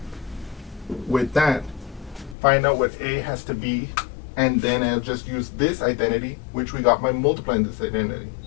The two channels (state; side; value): drops out; right; at 2.4 s